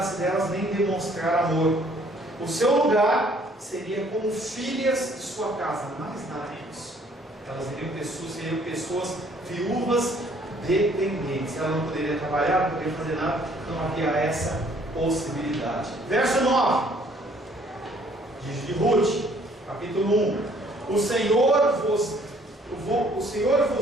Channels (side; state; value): both; normal; correlation 0.61